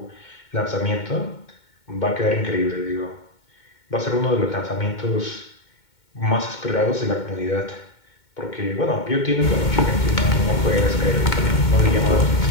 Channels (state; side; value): late; right; 2.2 ms